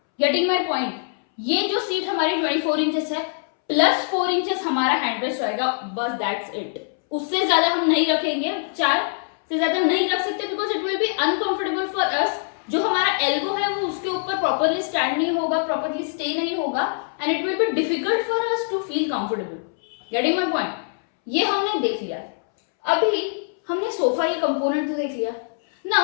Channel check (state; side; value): silent; right; 63 dB below the other